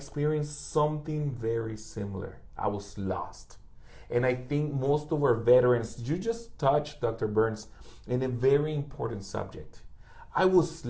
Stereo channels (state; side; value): identical; both; correlation 1.00